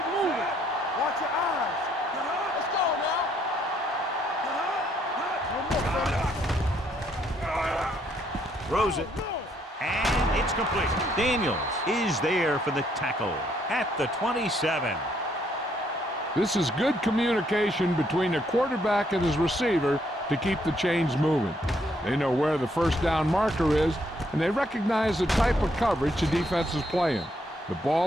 moving. Watch your eyes. Let's go now. Throws it. And it's complete. Daniels is there for the tackle at the 27. This is good communication between the quarterback and his receiver to keep the chains moving. They know where the first down marker is, and they recognize the type of coverage the defense is playing. The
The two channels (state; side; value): normal; both; correlation 0.71